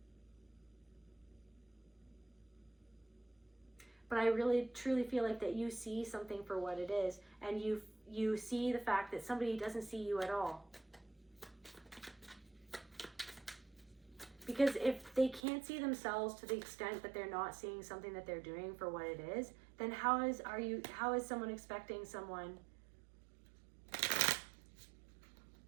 But I really truly feel like that you see something for what it is, and you see the fact that somebody doesn't see you at all. Because if they can't see themselves to the extent that they're not seeing something that they're doing for what it is, then how is someone expecting someone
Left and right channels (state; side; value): drops out; left; at 15.4 s